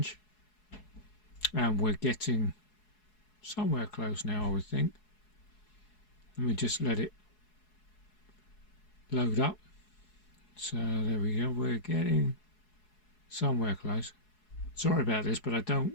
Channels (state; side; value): late; right; 4.7 ms